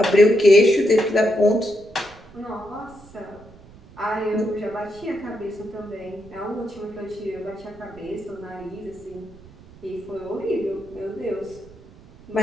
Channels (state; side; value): noise; right; rumble, 22 dB below the sound